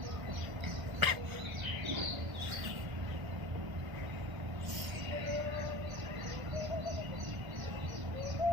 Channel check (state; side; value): late; left; 1.6 ms